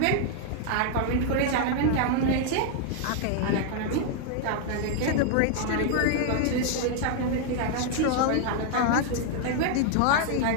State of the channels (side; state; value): both; different; correlation 0.00